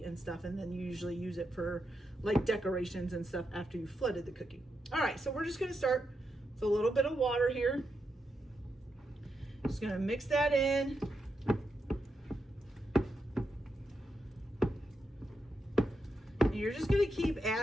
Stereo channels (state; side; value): normal; both; correlation 0.84